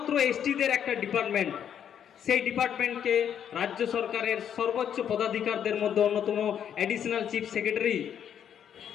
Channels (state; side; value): quieter; right; 8.9 dB